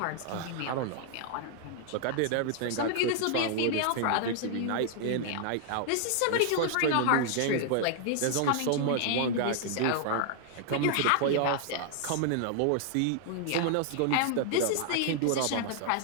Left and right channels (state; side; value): different; both; correlation 0.00